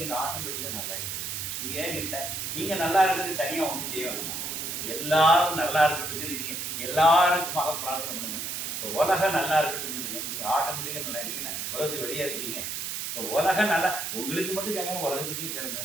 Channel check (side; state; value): right; noise; hiss, 4 dB below the sound